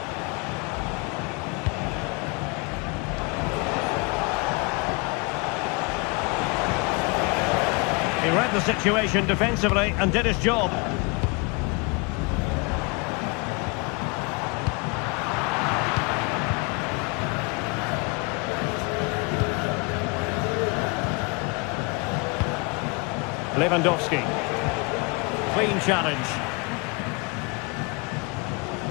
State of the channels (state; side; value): quieter; right; 30.0 dB